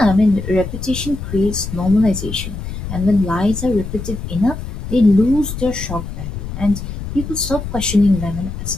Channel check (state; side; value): noise; left; rumble, 7 dB below the sound